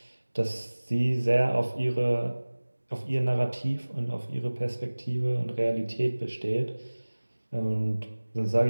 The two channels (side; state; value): both; inverted; correlation -1.00